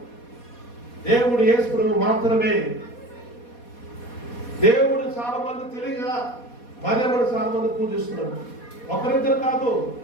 దేవుడు యేసుప్రభు మాత్రమే. దేవుడు చాలా మంది తెలియగా మరియమ్మని చాలా మంది పూజిస్తున్నారు. ఒకరిద్దరు కాదు,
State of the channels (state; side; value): late; right; 4.2 ms